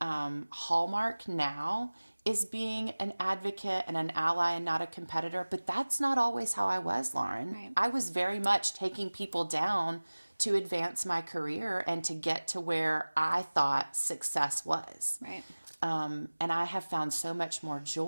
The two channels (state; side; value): inverted; both; correlation -1.00